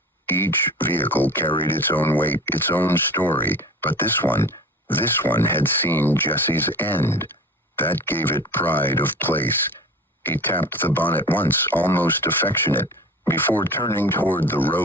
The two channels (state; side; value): normal; both; correlation 0.38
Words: Each vehicle carried its own weight, its own story, but this one had seen Jesse's end. That gave it pride of place. He tapped the bonnet once, almost affectionate, before turning toward the